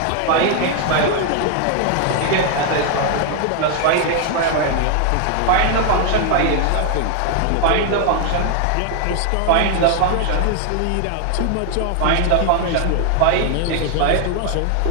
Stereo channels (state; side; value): different; both; correlation 0.00